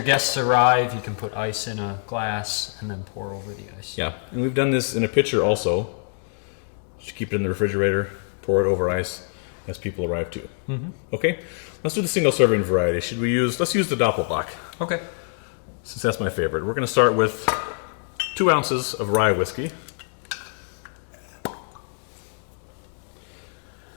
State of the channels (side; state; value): right; silent; 62 dB below the other